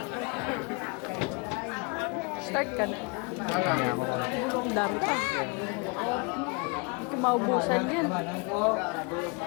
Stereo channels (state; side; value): quieter; right; 31.5 dB